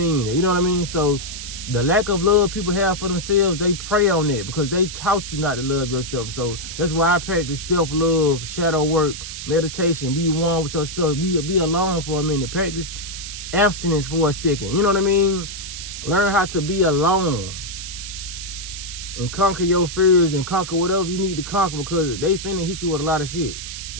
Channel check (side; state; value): right; noise; hiss, 9 dB below the sound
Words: it. You know what I mean? So the lack of love people have for themselves, they prey on it because they taught you not to love yourself. So that's why I practice self-love, shadow work, meditation, be one with yourself, be alone for a minute, practice abstinence for a second. You know what I mean? Learn how to be alone and conquer your fears and conquer whatever you need to conquer because they finna hit you with a lot of shit.